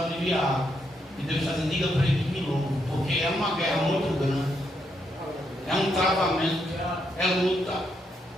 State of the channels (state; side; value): normal; both; correlation 0.78